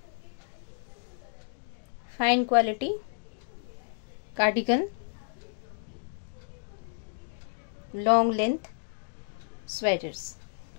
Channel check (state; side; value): silent; right; digital silence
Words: Fine quality cardigan, long length sweaters.